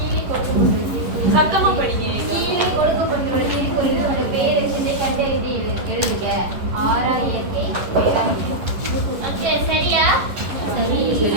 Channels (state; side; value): late; left; 11 ms